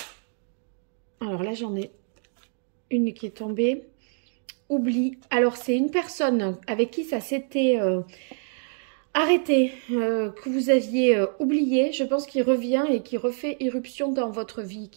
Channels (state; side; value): silent; left; 56 dB below the other